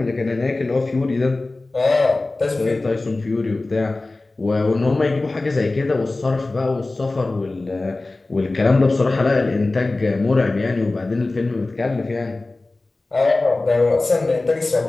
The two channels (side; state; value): right; quieter; 3.1 dB